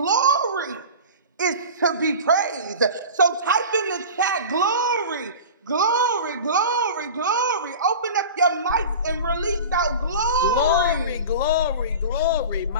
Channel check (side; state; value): both; inverted; correlation -0.34